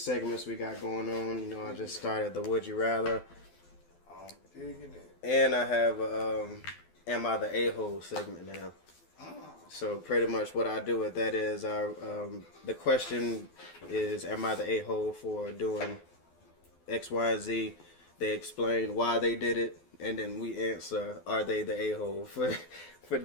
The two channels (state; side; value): late; right; 12 ms